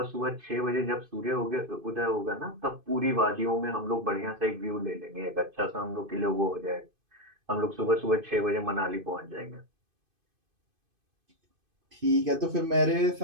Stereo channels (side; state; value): left; late; 2.5 ms